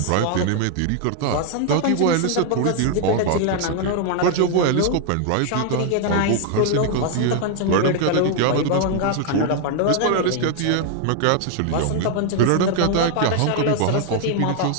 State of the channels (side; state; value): both; different; correlation 0.00